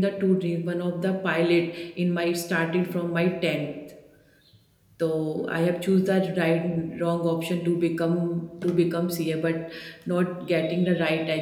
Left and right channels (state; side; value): identical; both; correlation 1.00